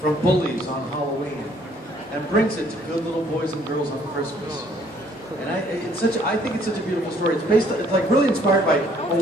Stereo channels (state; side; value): normal; both; correlation 0.62